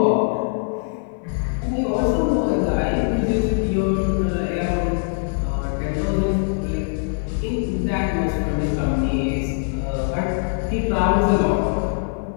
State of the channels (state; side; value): silent; right; digital silence